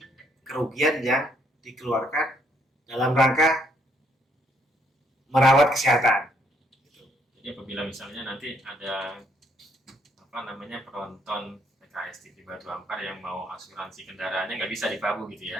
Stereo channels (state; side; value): normal; both; correlation 0.70